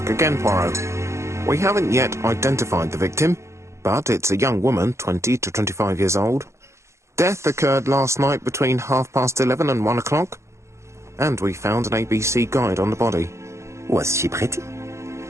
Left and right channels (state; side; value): late; left; 0.14 ms